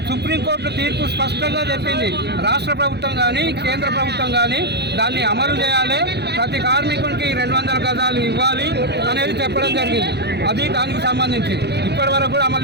సుప్రీంకోర్టు తీర్పు స్పష్టంగా చెప్పింది, రాష్ట్ర ప్రభుత్వం కానీ కేంద్ర ప్రభుత్వం కానీ దాన్ని అమలు చేయాలి, ప్రతి కార్మికునికి 200 గజాలు ఇవ్వాలి అనేది చెప్పడం జరిగింది. అది దానికి సంబంధించి ఇప్పటి వరకు కూడా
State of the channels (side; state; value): left; late; 0.49 ms